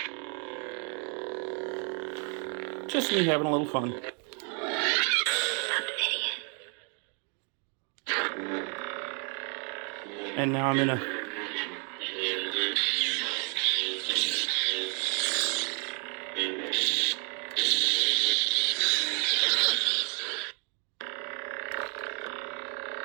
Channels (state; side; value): quieter; left; 38.2 dB